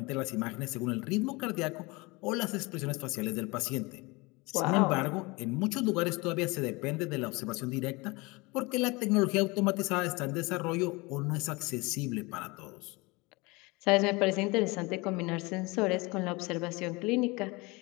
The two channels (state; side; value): quieter; right; 25.1 dB